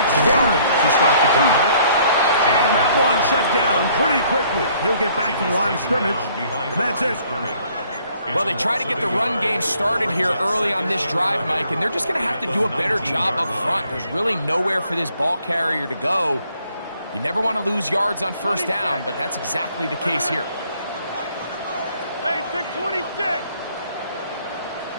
Warren to start the drive. And that one shut down pretty quickly. He'll get back to the line of scrimmage, and that's it. Well, they try to get the run game started here early on this drive, Mike, and they're just going to have to do a better job up front. There's really nowhere for this ball carrier to go. You never want to lose yards on 1st down, but that's exactly the case here. Hey, take 26.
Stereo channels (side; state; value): both; inverted; correlation -0.63